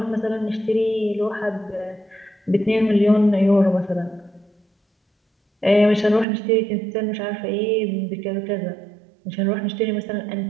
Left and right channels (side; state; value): left; drops out; at 6.2 s